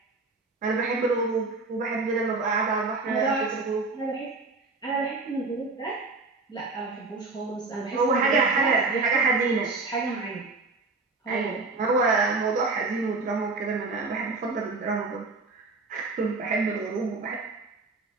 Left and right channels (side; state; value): left; quieter; 3.7 dB